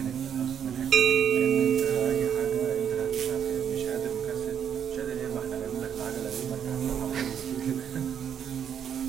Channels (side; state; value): left; quieter; 8.4 dB